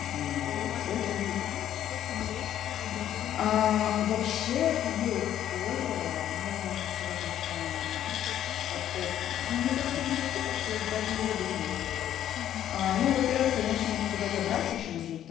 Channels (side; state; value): right; quieter; 11.2 dB